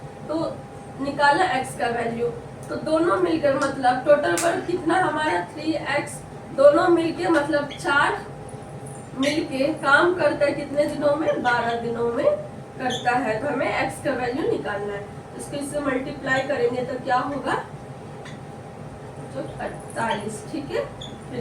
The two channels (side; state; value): both; identical; correlation 1.00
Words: तो निकाला x का वैल्यू, तो दोनों मिलकर मतलब टोटल वर्क कितना हमारा 3x। दोनों मिलके मतलब 4 मिलके काम करता है कितने दिनों में? 12 दिनों में करता है। तो हमें x का वैल्यू निकालना है। इसको इससे मल्टीप्लाई करेंगे तो क्या होगा? 48। ठीक है, फिर